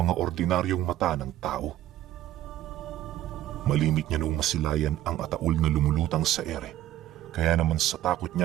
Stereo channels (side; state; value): left; quieter; 13.3 dB